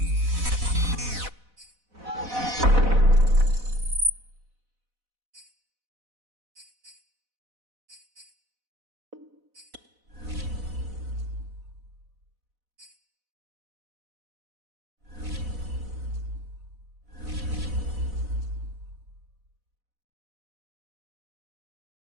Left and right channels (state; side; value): late; left; 4.0 ms